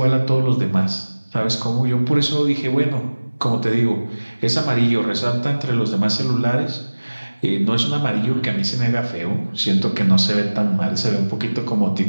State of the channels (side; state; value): both; inverted; correlation -1.00